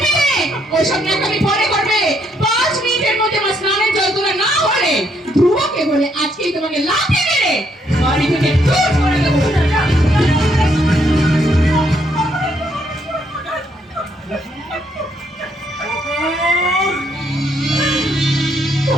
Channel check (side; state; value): both; normal; correlation 0.72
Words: মেয়ে, ওসব ন্যাকামি পরে করবে। 5 মিনিটের মধ্যে আমার স্নানের জল তোলা না হলে ধ্রুবকে বলে আজকেই তোমাকে লাথি মেরে বাড়ি থেকে দূর করে দেবো।